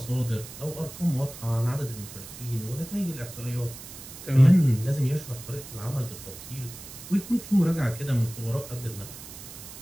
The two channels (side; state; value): right; noise; hiss, 14 dB below the sound